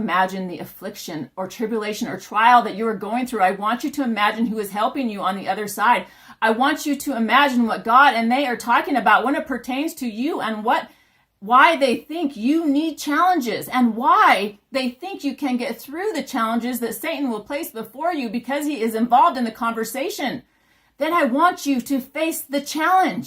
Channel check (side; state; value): both; identical; correlation 1.00